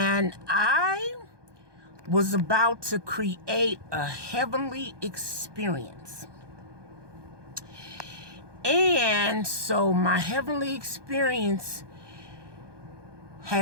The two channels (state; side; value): late; left; 1.2 ms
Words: I was about to create a heavenly experience. And so my heavenly experience